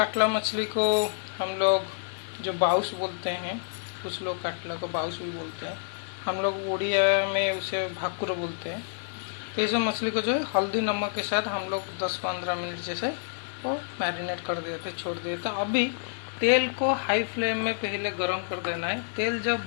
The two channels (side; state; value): right; silent; digital silence